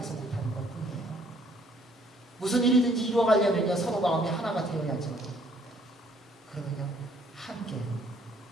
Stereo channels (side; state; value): both; normal; correlation 0.62